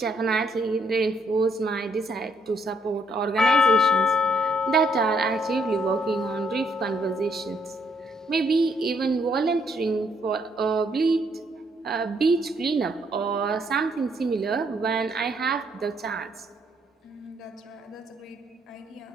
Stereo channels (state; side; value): normal; both; correlation 0.71